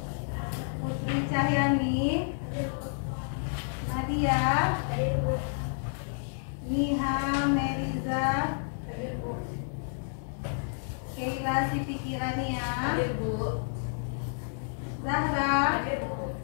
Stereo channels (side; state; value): right; silent; digital silence